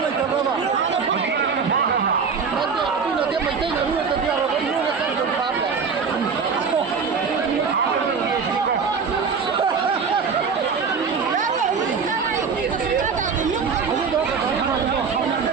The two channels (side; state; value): left; quieter; 5.7 dB